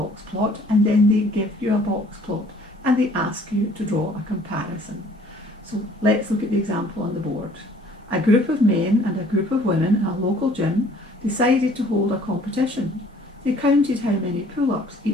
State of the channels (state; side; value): normal; both; correlation 0.56